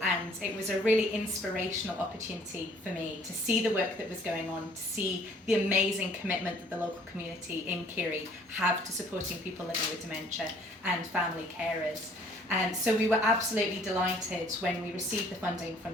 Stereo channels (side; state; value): both; normal; correlation 0.58